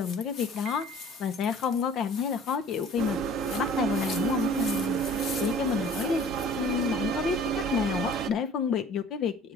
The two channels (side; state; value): both; normal; correlation 0.48